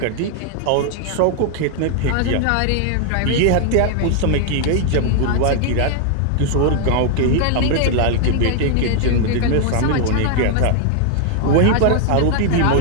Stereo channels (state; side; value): different; both; correlation 0.00